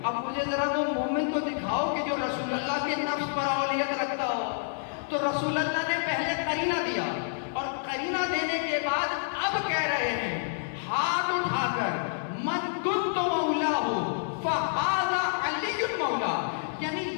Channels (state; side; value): silent; right; digital silence